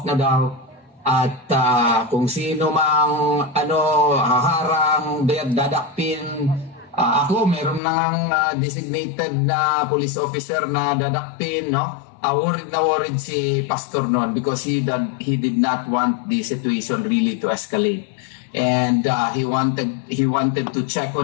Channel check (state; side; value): drops out; right; at 7.8 s